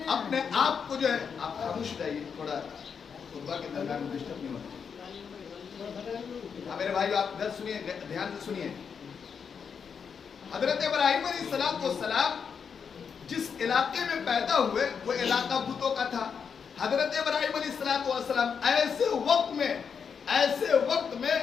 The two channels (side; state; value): right; quieter; 6.5 dB